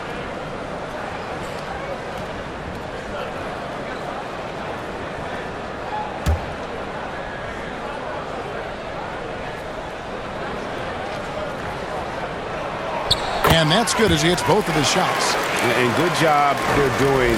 And that's good as he hits both of his shots. And good job they're doing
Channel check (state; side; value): identical; both; correlation 1.00